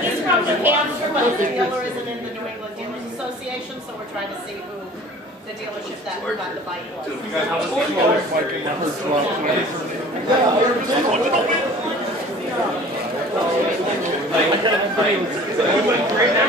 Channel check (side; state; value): both; normal; correlation 0.46